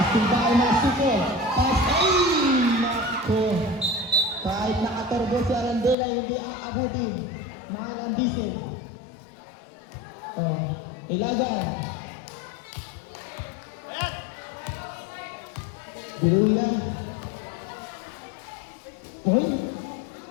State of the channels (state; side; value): drops out; right; at 6.0 s